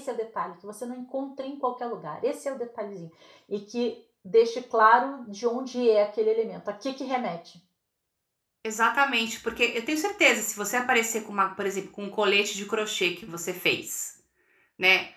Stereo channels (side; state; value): both; identical; correlation 1.00